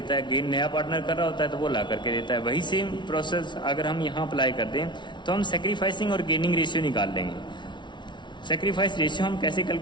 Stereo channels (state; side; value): late; right; 0.23 ms